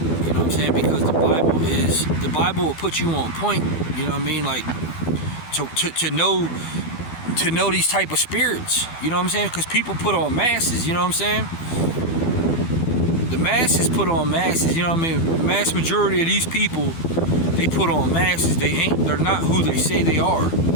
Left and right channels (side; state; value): right; late; 12 ms